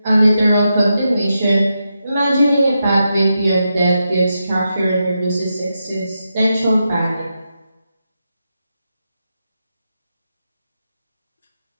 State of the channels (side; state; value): both; inverted; correlation -0.87